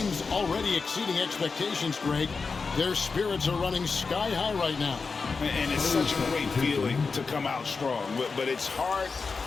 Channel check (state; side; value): quieter; right; 4.7 dB